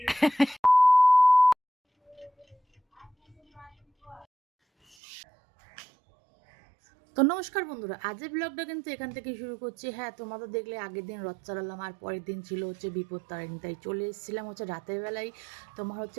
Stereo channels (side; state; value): left; drops out; at 5.0 s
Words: তো নমস্কার বন্ধুরা, আজের ব্লগটা কিন্তু এখান থেকে শুরু করছি। হ্যাঁ, তোমাদের দেখলে আগের দিন রথ চালালাম আর পরের দিন ছিল হচ্ছে বিপদ তারিণী, তাই চলে এসেছিলাম হচ্ছে রাতের বেলায় তোমার